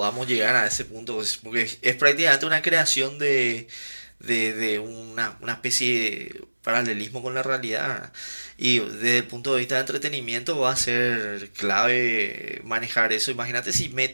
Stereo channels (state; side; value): inverted; both; correlation -1.00